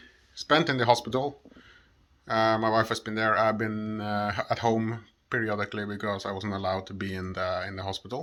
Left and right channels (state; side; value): identical; both; correlation 1.00